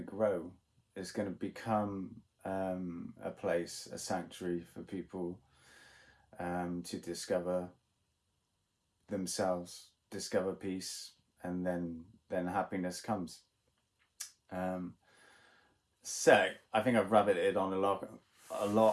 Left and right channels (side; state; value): both; identical; correlation 1.00